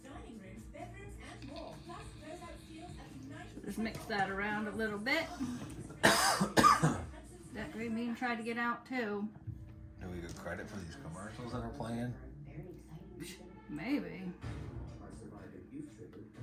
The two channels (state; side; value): identical; both; correlation 1.00